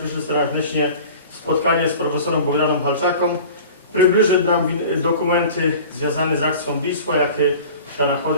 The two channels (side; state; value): both; inverted; correlation -0.41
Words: serdecznie spotkanie z profesorem Bogdanem Halczaką. Przybliży nam dokumenty związane z akcją Wisła, jakie się